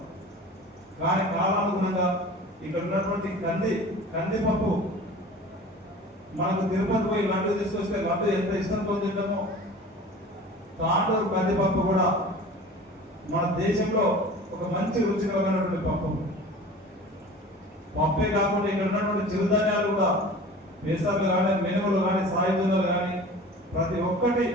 కానీ కాలానుగుణంగా ఇక్కడ ఉన్నటువంటి కందిపప్పు మనకు తిరుపతి పోయి లడ్డు తీసుకొస్తే లడ్డు ఎంత ఇష్టంతో తింటామో తాండూరు కందిపప్పు కూడా మన దేశంలో ఒక మంచి రుచికరమైనటువంటి పప్పే కాకుండా ఇక్కడ ఉన్నటువంటి చిరుధాన్యాలు కూడా పెసర్లు కానీ, మినుములు కానీ, సాయుధాలు కానీ ప్రతి ఒక్కటి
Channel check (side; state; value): both; normal; correlation 0.40